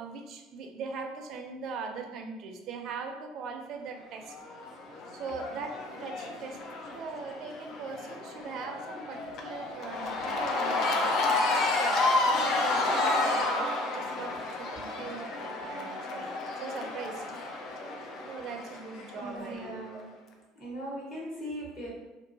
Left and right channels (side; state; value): both; normal; correlation 0.51